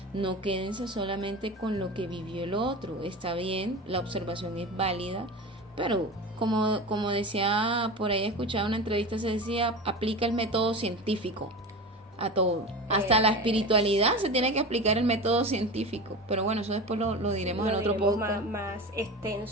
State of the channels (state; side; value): normal; both; correlation 0.29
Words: No quédense solamente con lo que vivió el otro. Está bien, la observación es válida, pero como decía, por ahí he escuchado una entrevista, se decía, aplica el método científico a todo, hasta la espiritualidad se tiene que aplicar el método científico, pero bueno, eso después lo diremos en otro podcast más